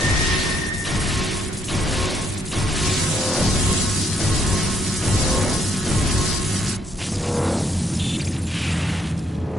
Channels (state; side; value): normal; both; correlation 0.71